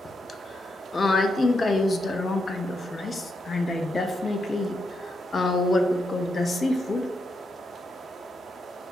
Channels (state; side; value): normal; both; correlation 0.82